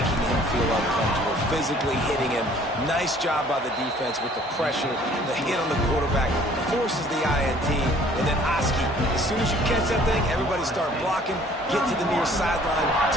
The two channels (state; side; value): normal; both; correlation 0.55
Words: him feel uncomfortable, physically hitting him. Nice job by the defense with the pressure, the hit on the quarterback, forces the INT, and then Oski. As soon as you catch that thing, everybody start blocking, get to the near sideline,